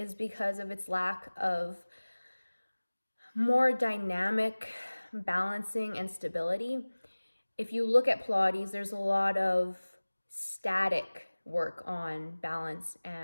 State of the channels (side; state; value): both; inverted; correlation -1.00